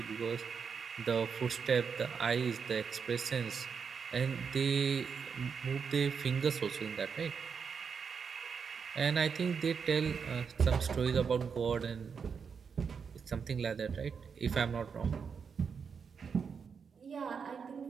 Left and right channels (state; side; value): quieter; left; 6.2 dB